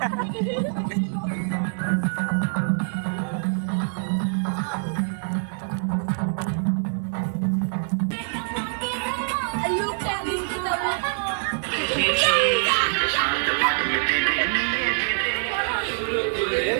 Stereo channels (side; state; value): left; silent; digital silence